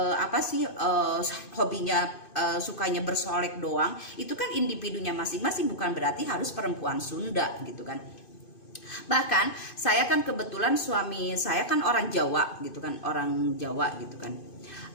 hobinya sukanya bersolek doang, itu kan individunya masing-masing, bukan berarti harus perempuan Sunda gitu kan. Bahkan saya kan kebetulan suami saya kan orang Jawa gitu kan, orang Jawa gitu kan.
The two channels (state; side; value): late; right; 2.5 ms